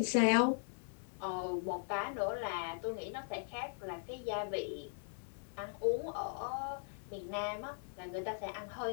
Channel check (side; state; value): right; silent; 52 dB below the other